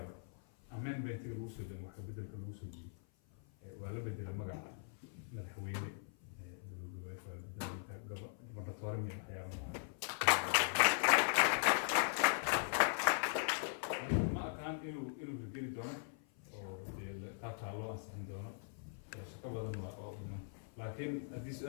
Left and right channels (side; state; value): right; silent; 51 dB below the other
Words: amendmentiga lagu soo dego wax ka bedelka lagu soo jiiyo waa la bedela magaca madaxweyne gobernatoore iyo waxyaaba ma aqaan inuu hirgeli doono oo qaabkaa loo ansixin doono shaqo badan waa oo dhiman laakiin haddii